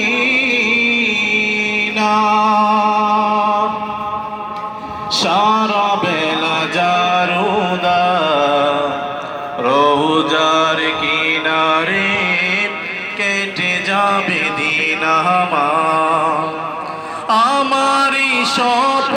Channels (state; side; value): identical; both; correlation 1.00